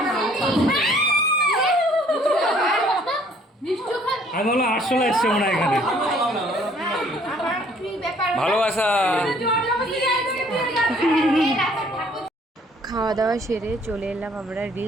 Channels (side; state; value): both; normal; correlation 0.60